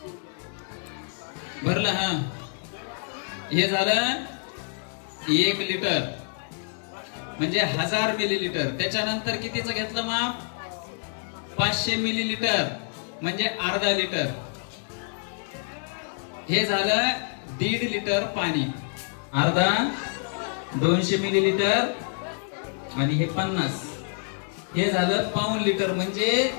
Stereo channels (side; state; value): right; silent; 58 dB below the other